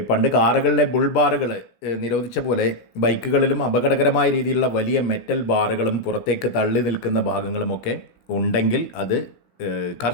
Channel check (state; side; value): late; right; 17 ms